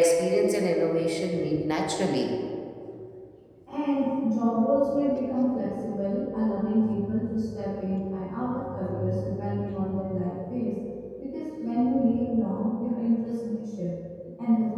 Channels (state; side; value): identical; both; correlation 1.00